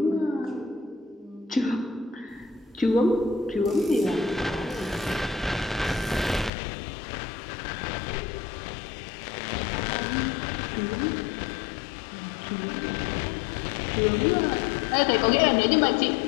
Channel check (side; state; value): right; drops out; at 6.5 s